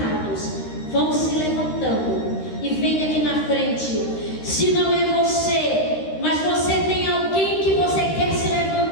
vão se levantando e venha aqui na frente. Se não é você, mas você tem alguém que você quer se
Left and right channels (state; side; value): late; right; 13 ms